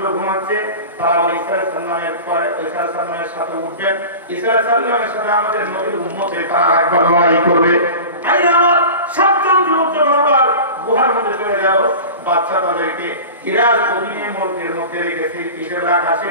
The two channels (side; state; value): both; inverted; correlation -0.35